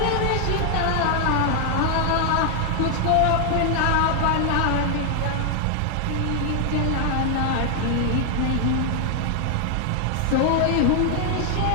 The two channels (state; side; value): different; both; correlation 0.00